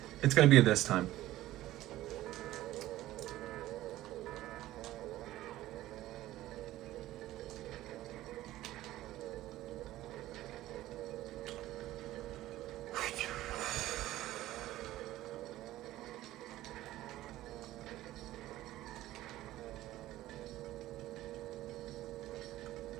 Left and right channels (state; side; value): quieter; left; 15.3 dB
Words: It's gonna be this time.